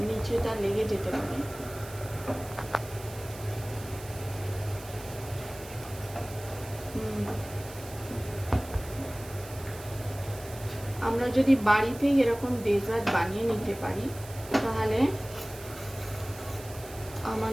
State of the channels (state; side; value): noise; right; hiss, 16 dB below the sound